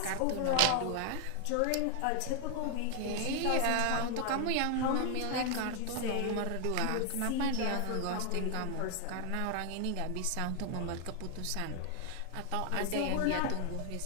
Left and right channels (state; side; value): different; both; correlation 0.00